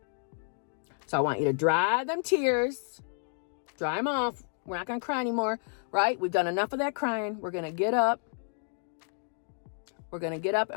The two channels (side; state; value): right; silent; 57 dB below the other